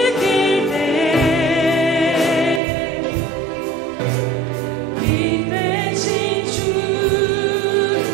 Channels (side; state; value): left; drops out; at 2.6 s